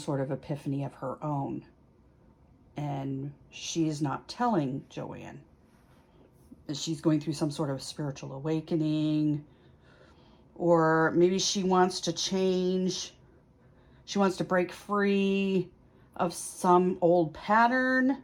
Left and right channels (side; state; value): both; identical; correlation 1.00